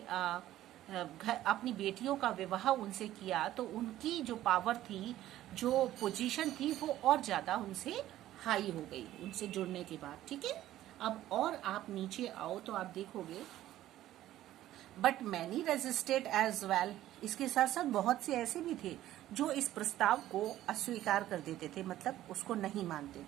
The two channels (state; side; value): quieter; left; 13.8 dB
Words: अपनी बेटियों का विवाह उनसे किया तो उनकी जो पावर थी, जो पोजीशन थी, वो और ज्यादा उनसे हाई हो गई उनसे जुड़ने के बाद। ठीक है, अब और आप नीचे आओ तो आप देखोगे but many resisted as well. इसके साथ साथ बहुत से ऐसे भी थे जो इस प्रस्ताव को अस्वीकार कर देते थे, मतलब उसको नहीं मानते